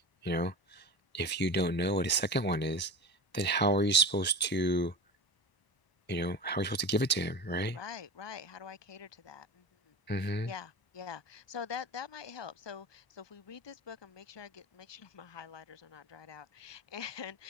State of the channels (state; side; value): late; right; 1.0 ms